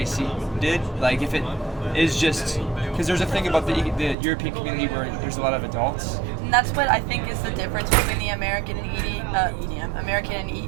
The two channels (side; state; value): left; drops out; at 4.2 s